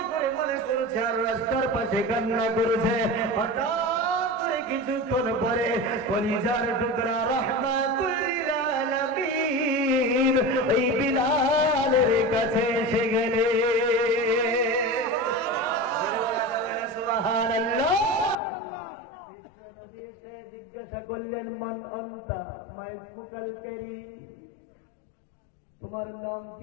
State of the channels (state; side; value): drops out; right; at 18.4 s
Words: করে মনে করছে আর রাস্তার পাশে কান্না করেছে। হঠাৎ করে কিছুক্ষণ পরে কলিজার টুকরা রাহমাতুল লিল আলামিন ওই বিলালের কাছে এসে গেলে। জিজ্ঞাসা করলেন, মান আনতা, মা ইসমুকাল কারীম, তোমার নাম